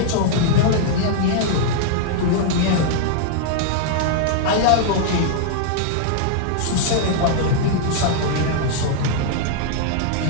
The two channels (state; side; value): different; both; correlation -0.01